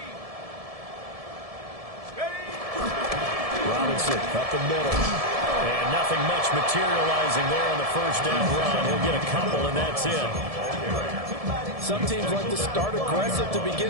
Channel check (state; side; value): late; left; 1.7 ms